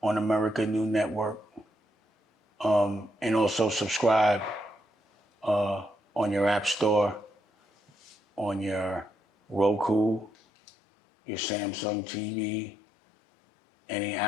America New Network, and also subscribe on your app store, on your Roku, your Samsung TV, any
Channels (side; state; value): right; drops out; at 10.3 s